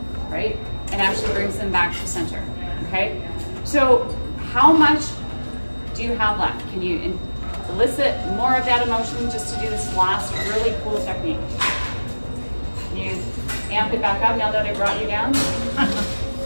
right? And actually brings them back to center, okay? So how much do you have left? Can you elicit more of that emotion just to do this last really cool technique? Can you amp it back up now that I brought you down? A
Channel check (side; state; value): both; inverted; correlation -1.00